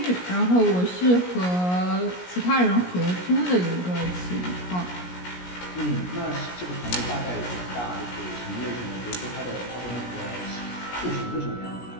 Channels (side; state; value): right; late; 17 ms